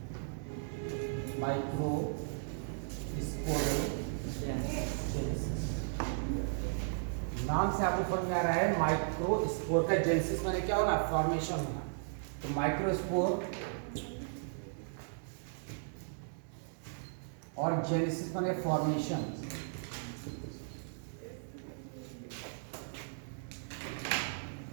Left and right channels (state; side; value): silent; left; digital silence